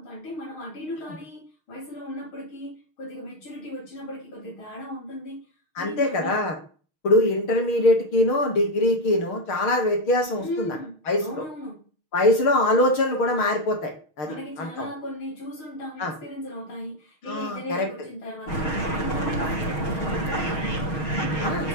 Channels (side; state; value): right; late; 6.4 ms